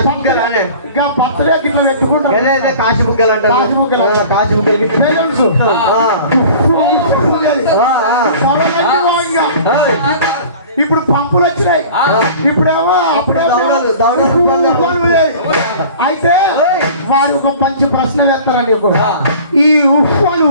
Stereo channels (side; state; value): both; inverted; correlation -0.43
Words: ఇంకా బర్త్డే ఇట్లా పెట్టుకుంటావు కాశీ బుగ్గలు అంటారు. కాశీ బుగ్గలు బెలూన్స్ ఇప్పుడు పంపులు వచ్చినాయి, ఇప్పుడేమో అయితే వారు ఒక మంచి ప్రశ్న వేస్తారని ఈ ఉఫ్ఫను